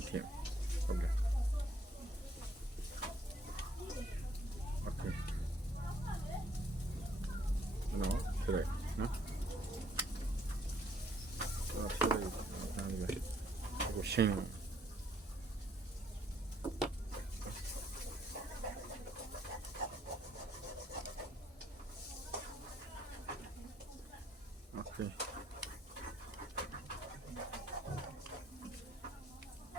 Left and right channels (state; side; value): normal; both; correlation 0.66